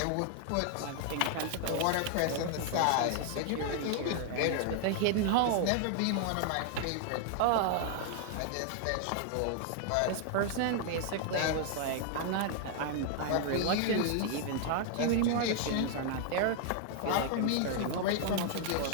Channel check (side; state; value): both; different; correlation 0.00